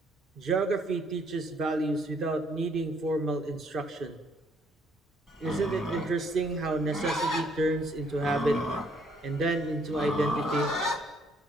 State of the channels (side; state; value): both; normal; correlation 0.67